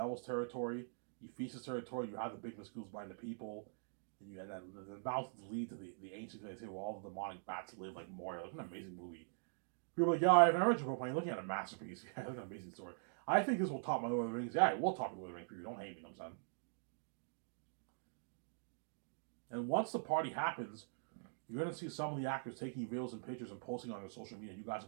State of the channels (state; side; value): silent; left; digital silence